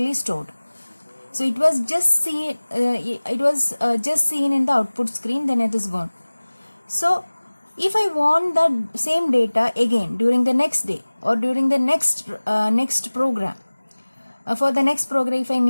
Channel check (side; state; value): both; inverted; correlation -1.00